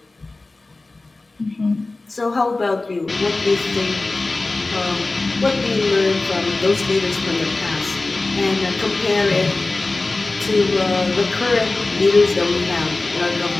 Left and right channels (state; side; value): quieter; right; 3.2 dB